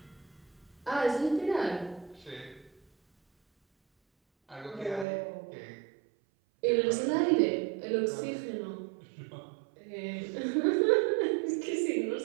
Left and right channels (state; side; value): drops out; left; at 5.1 s